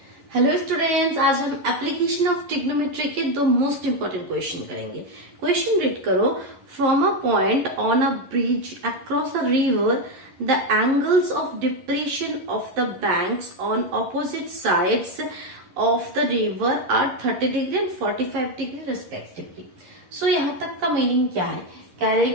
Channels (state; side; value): late; left; 11 ms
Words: Hello students, आज हम application of trigonometry के दो मोस्ट इंपोर्टेंट क्वेश्चन करेंगे। क्वेश्चन रीड करो। From a point on a bridge across a river the angles of depression of the banks on opposite sides of the river are 30 degree and 45 degree respectively. So यहाँ तक का meaning क्या है? कह रहे